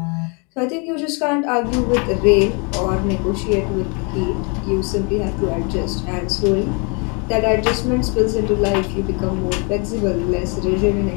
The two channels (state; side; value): quieter; right; 33.8 dB